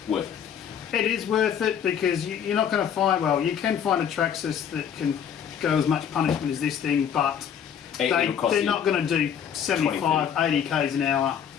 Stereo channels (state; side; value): quieter; right; 8.4 dB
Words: worth it. It is worth it because you're not going to find, well, you can find a Traxxas that can go as much punishment as this thing, but they're not going to do 75, 80 k's an hour.